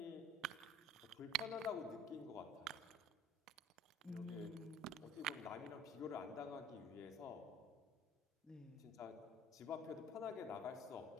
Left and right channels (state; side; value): normal; both; correlation 0.49